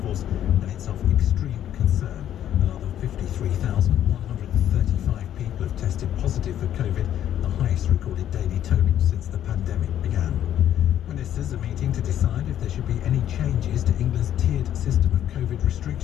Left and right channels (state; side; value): quieter; right; 10.9 dB